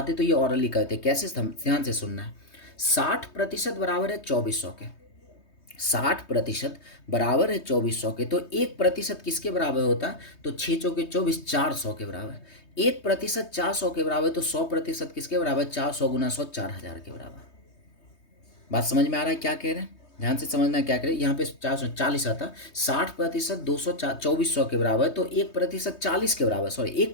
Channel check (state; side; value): late; right; 3.2 ms